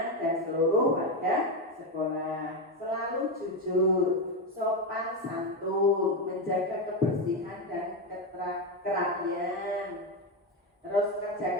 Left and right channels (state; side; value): normal; both; correlation 0.10